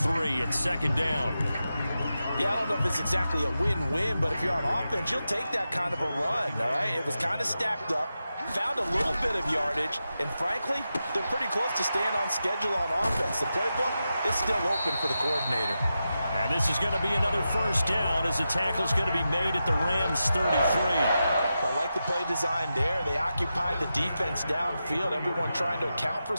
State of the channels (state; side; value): inverted; both; correlation -0.90